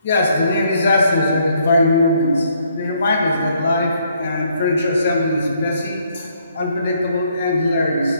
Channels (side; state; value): both; inverted; correlation -0.69